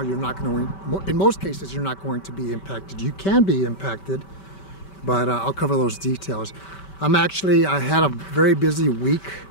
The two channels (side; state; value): right; late; 5.2 ms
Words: you're not going to, in most cases, you're not going to be impacted. You can be impacted, but I'll cover those details. I had a very busy week